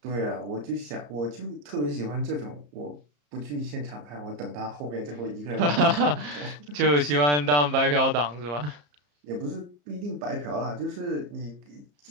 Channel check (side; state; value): left; late; 34 ms